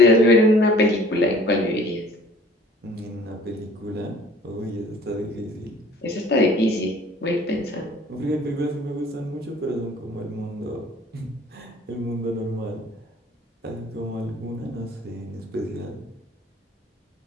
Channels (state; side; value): normal; both; correlation 0.51